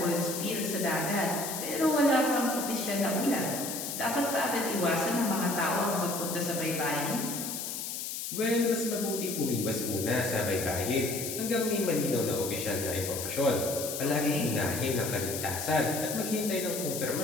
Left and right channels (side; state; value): left; noise; hiss, 5 dB below the sound